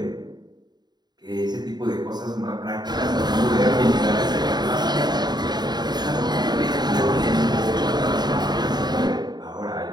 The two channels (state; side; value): late; left; 0.20 ms